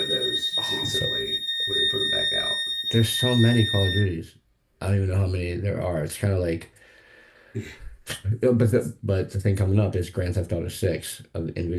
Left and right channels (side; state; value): both; identical; correlation 1.00